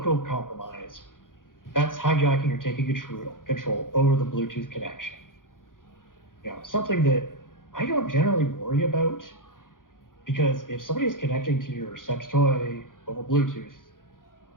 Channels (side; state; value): right; late; 0.89 ms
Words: compromise, that's hijacking or taking control over the Bluetooth connection. Something that I don't generally worry about, because if somebody is connecting to your sex toy over Bluetooth,